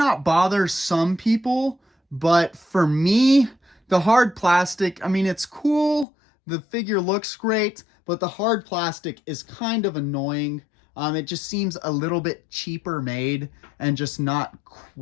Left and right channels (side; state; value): right; drops out; at 6.1 s